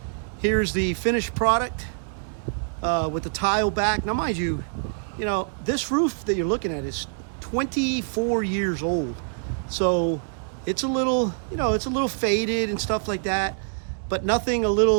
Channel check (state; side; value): silent; left; 62 dB below the other